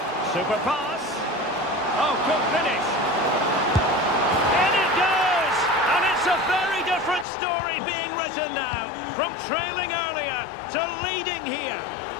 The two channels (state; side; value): drops out; right; at 7.2 s